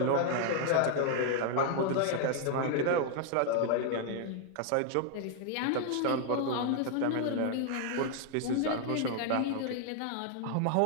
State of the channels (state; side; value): different; both; correlation 0.00